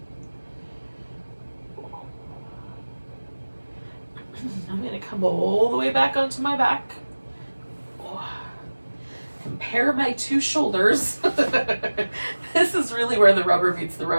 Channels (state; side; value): inverted; both; correlation -1.00